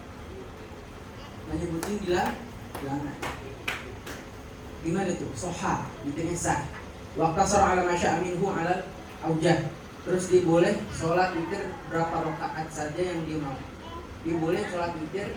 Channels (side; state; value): both; identical; correlation 1.00